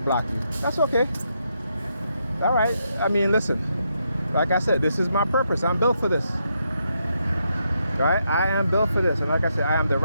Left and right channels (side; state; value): both; inverted; correlation -0.80